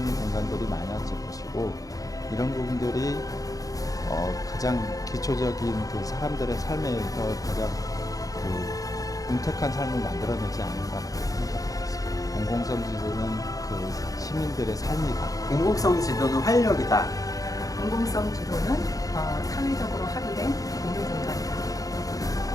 공간들이 많아질 것이고 이런 부분들이 가장 기초적인 그 사람들의 삶에서 가장 윤택한 삶을 만들어내지 않는가라고 생각하고 있습니다. 공공성 지도는 그 시민들의 삶이다. 공공성 지도는 활력이다. 공공성 지도는 사회적으로 합의된 공유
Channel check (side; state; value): right; late; 0.17 ms